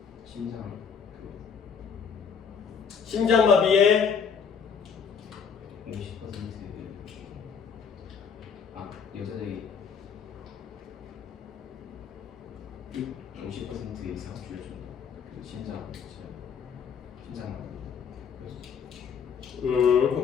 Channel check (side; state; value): right; quieter; 6.6 dB